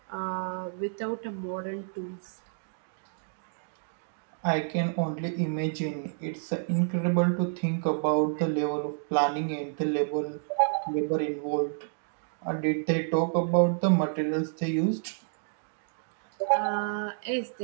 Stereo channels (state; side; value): silent; left; digital silence